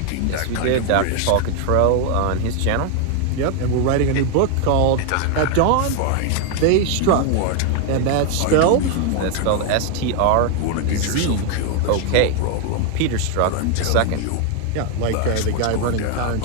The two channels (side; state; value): both; different; correlation 0.00